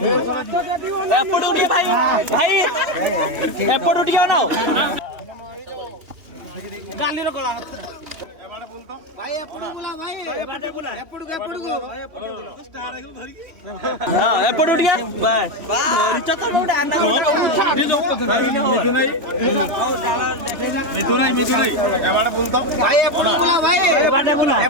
भाई एपट उठिया ना गाली कला भाई एपट बोला भाई एपट बोला एपट को स्टार आइकन धरि हां एपट उठिया बाय धरि त तो गोटे आना छाडी जो तो धरि नहीं मिथु नहीं एबाडा बोलतो भाई एपट बोला भाई एबाडा बोला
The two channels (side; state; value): left; late; 2.9 ms